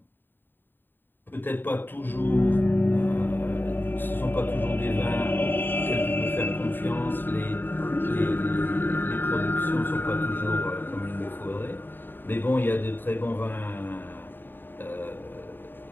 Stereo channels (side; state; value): right; late; 0.094 ms